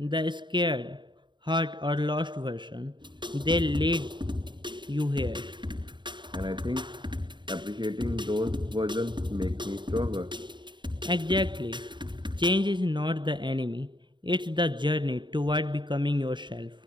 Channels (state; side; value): late; left; 0.23 ms